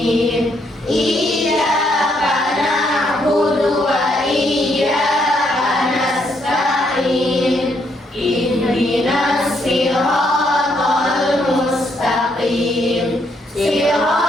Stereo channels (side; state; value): both; normal; correlation 0.73